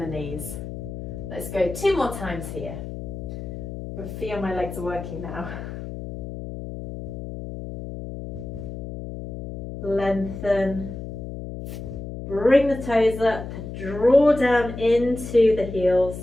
knees. Let's go 2 more times here. I feel my legs are working now. Lengthen, bring the toes up, draw down into the heels,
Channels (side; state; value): left; noise; hum, 9 dB below the sound